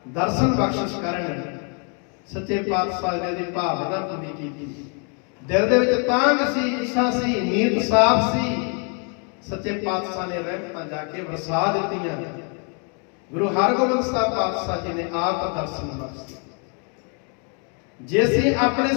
ਦਰਸ਼ਨ ਬਖਸ਼ਿਸ਼ ਕਰਨ। ਸੱਚੇ ਪਾਤਸ਼ਾਹ ਨੇ ਦੀ ਭਾਵਨਾ ਪੂਰੀ ਕੀਤੀ। ਦਿਲ ਦੇ ਵਿੱਚ ਤਾਂਗ ਸੀ, ਇੱਛਾ ਸੀ, ਨੀਤ ਸਾਫ਼ ਸੀ। ਸੱਚੇ ਪਾਤਸ਼ਾਹ ਨੇ ਰਹਿਮਤਾਂ ਜਾ ਕੇ ਵਰਸਾ ਦਿੱਤੀਆਂ। ਗੁਰੂ ਹਰਗੋਬਿੰਦ ਸਾਹਿਬ ਪਾਤਸ਼ਾਹ ਜੀ ਨੇ ਆਪ ਦਰਸ਼ਨ ਬਖਸ਼ੇ। ਜੇ ਅਸੀਂ ਆਪਣੇ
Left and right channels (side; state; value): right; quieter; 38.8 dB